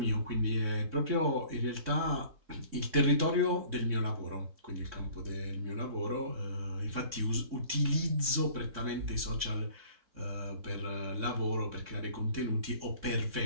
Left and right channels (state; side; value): late; left; 3.6 ms